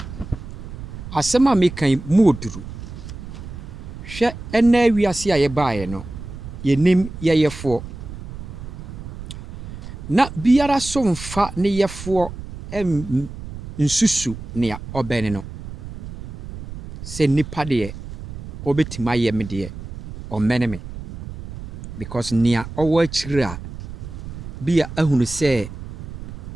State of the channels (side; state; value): right; noise; rumble, 11 dB below the sound